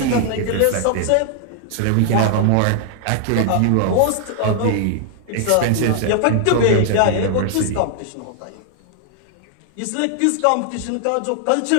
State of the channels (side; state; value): both; different; correlation 0.00